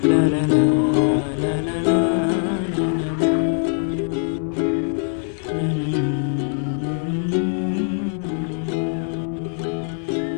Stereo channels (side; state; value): right; silent; 58 dB below the other